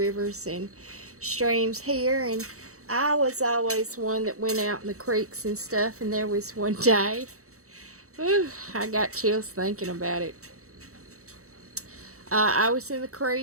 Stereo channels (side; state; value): left; late; 0.64 ms